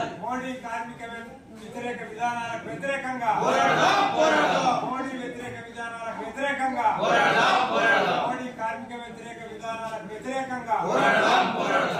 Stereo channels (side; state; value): both; identical; correlation 1.00